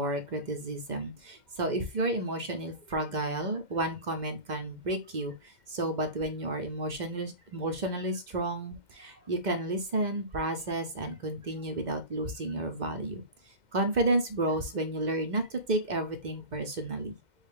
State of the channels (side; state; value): left; late; 2.1 ms